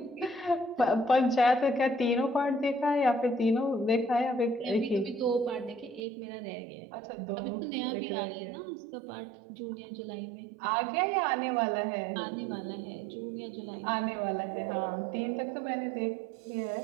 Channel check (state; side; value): drops out; left; at 6.1 s